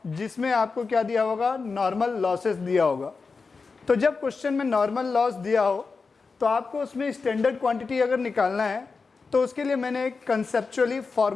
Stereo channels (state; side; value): quieter; right; 4.6 dB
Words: जिसमें आपको क्या दिया होगा, नॉर्मल लॉसेस दिया होगा। तो जब क्वेश्चन में नॉर्मल लॉस दिया हो तो आपको उसमें स्टैंडर्ड क्वांटिटी अगर निकालना है, तो उसके लिए मैंने एक कंसेप्चुअली